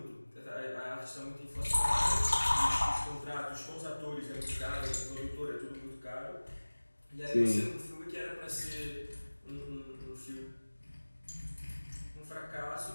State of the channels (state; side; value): inverted; both; correlation -1.00